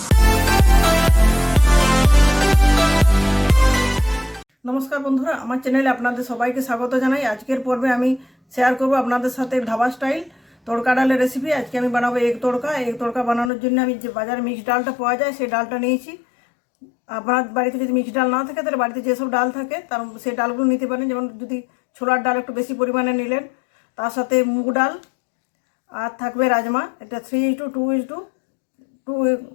নমস্কার বন্ধুরা, আমার চ্যানেলে আপনাদের সবাইকে স্বাগত জানাই। আজকের পর্বে আমি শেয়ার করব আপনাদের সাথে ধাবা স্টাইল তড়কা ডালের রেসিপি। আজকে আমি বানাবো এগ তড়কা। এগ তড়কা বানানোর জন্য আমি যে বাজারে মিক্সড ডালটা পাওয়া যায় সেই ডালটা নিয়েছি। আপনার বাড়িতে যদি মিক্সড ডাল না থাকে তাহলে বাড়িতে যেসব ডাল থাকে তার সেই ডালগুলো নিতে পারেন। যেমন যদি ছোলার ডাল একটু বেশি পরিমাণে নিলেন, তার সাথে মুগ ডাল আর থাকবে রাজমা। এটা 3:2:2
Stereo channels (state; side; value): drops out; right; at 13.5 s